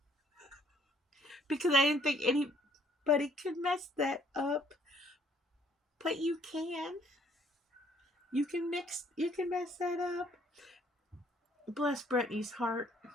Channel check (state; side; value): normal; both; correlation 0.64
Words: Because I didn't think anybody could mess that up. But you can. You can mess that up. Bless Brittany's heart.